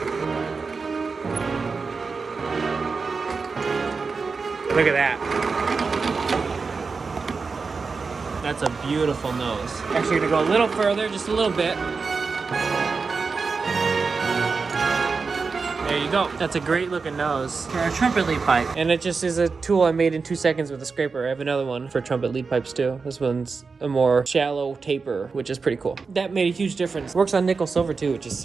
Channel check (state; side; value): quieter; left; 4.7 dB